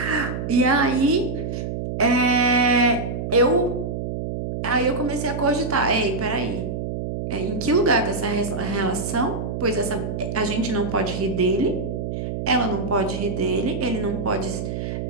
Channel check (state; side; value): noise; right; hum, 4 dB below the sound